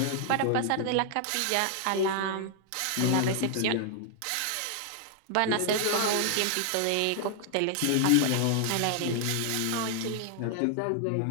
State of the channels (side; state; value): both; different; correlation 0.00